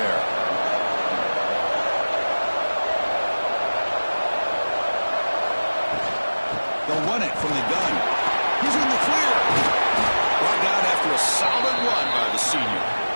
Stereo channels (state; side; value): inverted; both; correlation -1.00